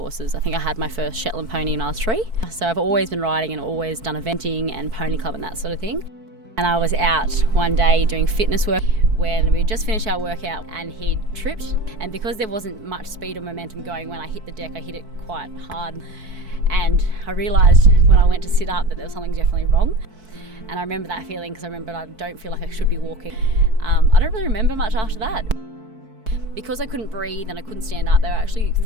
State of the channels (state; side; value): late; left; 4.6 ms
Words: I think I had my first Shetland pony when I was 3. So I've always been riding and always done eventing and pony club and that sort of thing. And I was out one day doing fitness work when we just finished our workout and he tripped. And because there wasn't much speed or momentum going when I hit the deck, I hit it quite hard. And I realised when I went to sit up that there was something definitely wrong. And I remember that feeling because I remember I don't feel like I should be walking. I don't really remember much after that. Because I couldn't breathe and I couldn't stand up, they actually